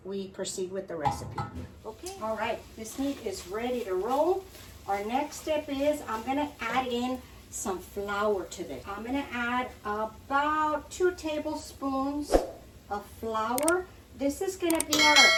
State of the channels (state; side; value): identical; both; correlation 1.00